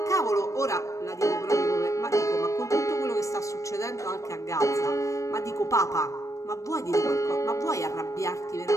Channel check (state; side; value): late; right; 0.15 ms